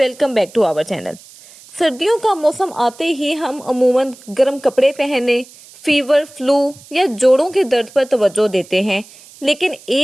back to our channel. सर्दियों का मौसम आते ही हम अमूमन गर्म कपड़े पहनने, फीवर, फ्लू या जोड़ों के दर्द पर तवज्जो देते हैं, लेकिन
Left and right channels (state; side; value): noise; right; hiss, 22 dB below the sound